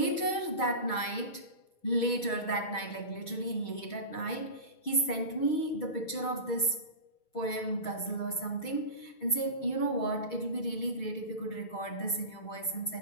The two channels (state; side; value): late; right; 6.3 ms